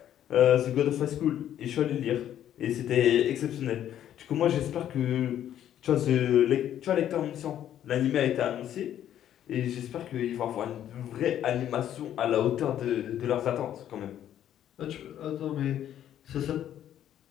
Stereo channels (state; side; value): quieter; right; 10.9 dB